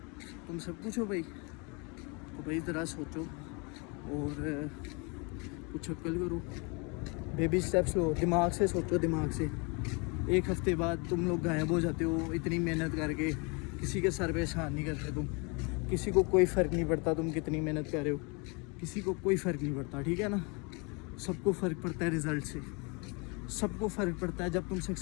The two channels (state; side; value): quieter; right; 31.5 dB